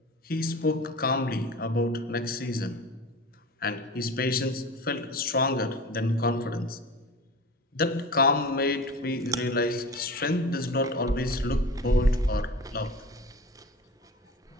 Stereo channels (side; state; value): both; normal; correlation 0.35